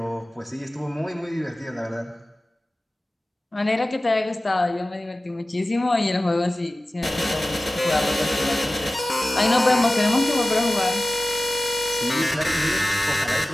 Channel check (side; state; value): both; normal; correlation 0.96